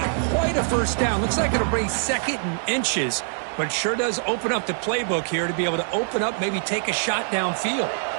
quite a first down. Looks like it'll bring 2nd and inches, but sure does open up the playbook here to be able to open up, maybe take a shot downfield.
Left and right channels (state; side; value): silent; left; digital silence